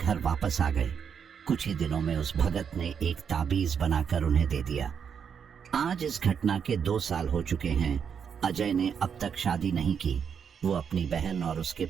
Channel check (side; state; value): left; quieter; 7.2 dB